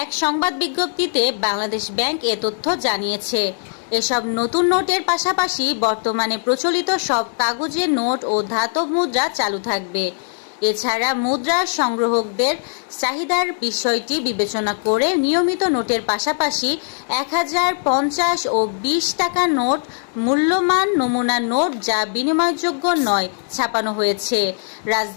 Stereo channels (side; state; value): right; silent; 66 dB below the other